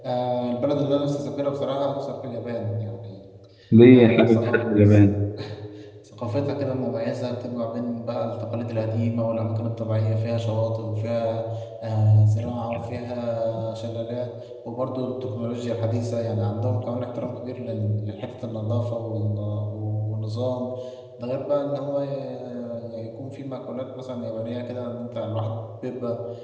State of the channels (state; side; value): identical; both; correlation 1.00